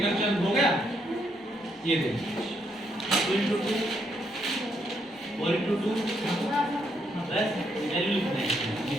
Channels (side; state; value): both; normal; correlation 0.75